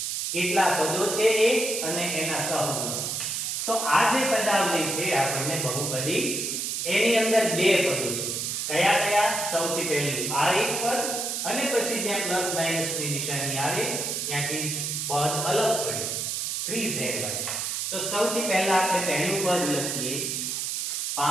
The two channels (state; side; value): noise; right; hiss, 2 dB below the sound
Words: કેટલા પદો છે એ અને એના સહગુણકો. તો આ જે પદાવલી છે આપણને બહુપદી, એની અંદર બે પદો છે. કયા કયા? સૌથી પહેલું આ એક પદ અને પછી જ્યાં પ્લસ માઈનસ ની નિશાની આવે ત્યાંથી પદ અલગ પડે 3zy. તો સૌથી પહેલા આપણે પહેલું પદ લખીએ